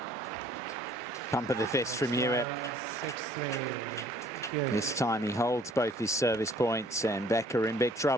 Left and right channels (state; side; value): normal; both; correlation 0.58